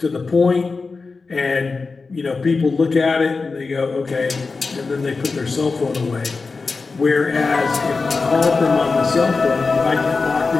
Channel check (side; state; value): right; quieter; 4.2 dB